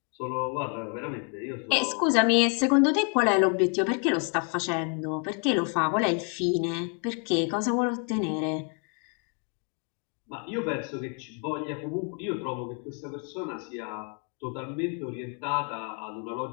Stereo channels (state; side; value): quieter; right; 38.9 dB